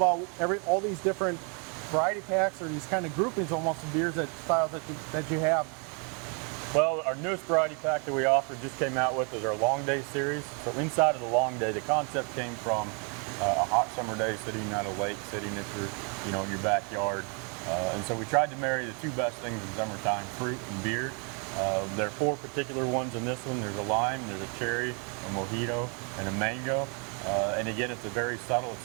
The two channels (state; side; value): quieter; left; 36.3 dB